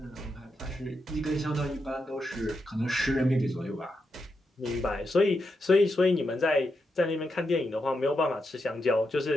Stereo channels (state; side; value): normal; both; correlation 0.84